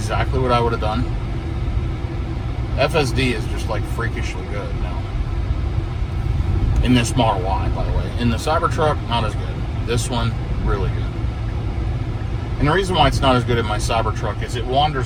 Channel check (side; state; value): both; identical; correlation 1.00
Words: what I would have done. FSD is just like freakishly good now. In this Model Y, by the way. In the Cybertruck, not as good. This one, really good. And the reason why it's not as good in my Cybertruck is it